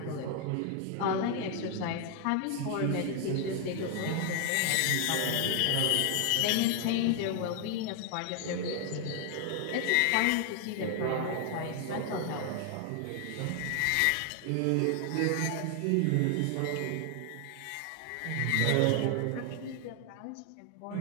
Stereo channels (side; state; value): both; different; correlation 0.00